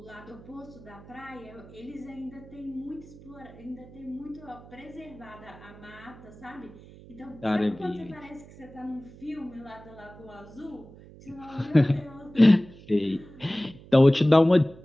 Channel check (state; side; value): noise; right; hum, 20 dB below the sound